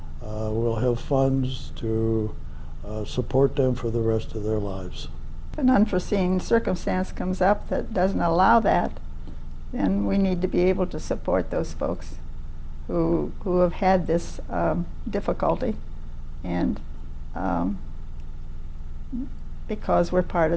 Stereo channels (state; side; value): identical; both; correlation 1.00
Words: will have funds to support them for the rest of their lives. If an unforeseen circumstance comes up that doesn't allow that, then we need to be able to support those folks who have had this difficulty, and because we're part